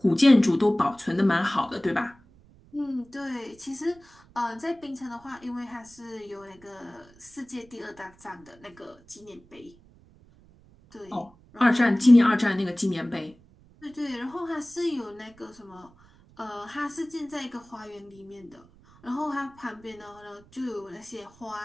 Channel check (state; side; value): noise; right; rumble, 27 dB below the sound